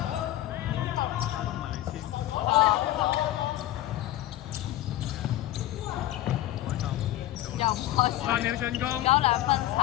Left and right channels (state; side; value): quieter; right; 14.3 dB